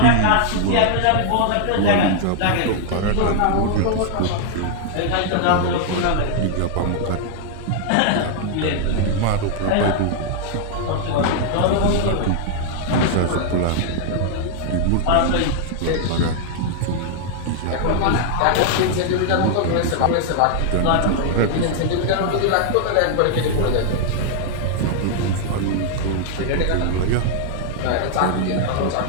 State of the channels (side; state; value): both; different; correlation 0.00